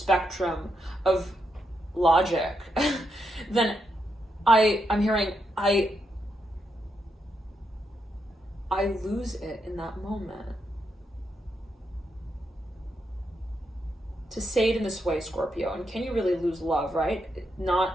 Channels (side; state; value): both; normal; correlation 0.81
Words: of logic, then I'm hearing I lose it in that moment. To say it in this way, Scorpio, and can you really lose love, right?